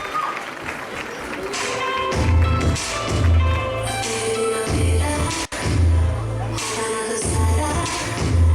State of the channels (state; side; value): identical; both; correlation 1.00